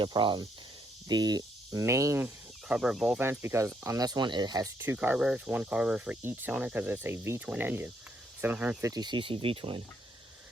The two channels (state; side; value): normal; both; correlation 0.73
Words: a problem. The main carburetor volt vents, because on this one it has two carburetors, one carburetor for each cylinder, because it's a V-twin engine, 750cc V-twin.